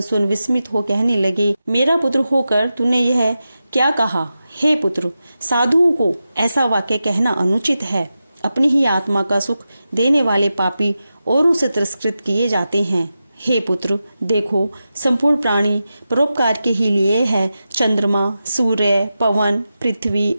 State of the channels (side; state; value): both; inverted; correlation -0.91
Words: सुन विस्मित हो कहने लगे, मेरा पुत्र होकर तूने यह क्या कहा? हे पुत्र, साधुओं को ऐसा वाक्य कहना अनुचित है। अपनी ही आत्मा का सुख देने वाले पापी औरों से तिरस्कृत किए जाते हैं। हे पुत्र, देखो, संपूर्ण प्राणी परोपकार के ही लिए है। चंद्रमा, सूर्य, पवन, पृथ्वी,